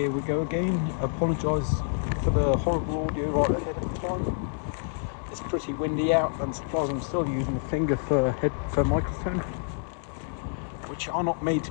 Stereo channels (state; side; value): silent; right; digital silence